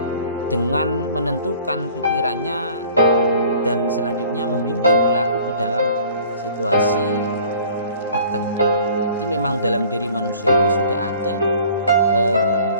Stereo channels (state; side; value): inverted; both; correlation -0.50